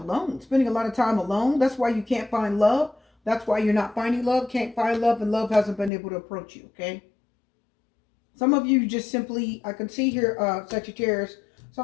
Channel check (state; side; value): drops out; right; at 5.9 s